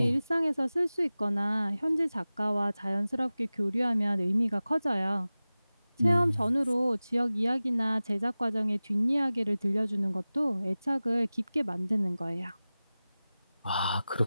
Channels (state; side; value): inverted; both; correlation -0.97